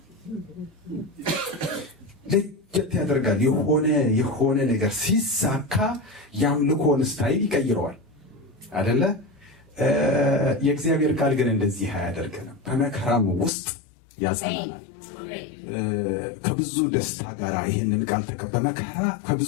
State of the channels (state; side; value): drops out; right; at 13.5 s